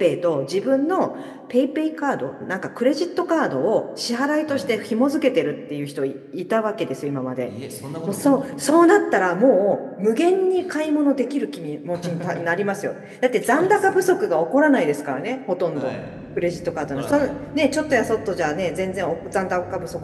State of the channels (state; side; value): identical; both; correlation 1.00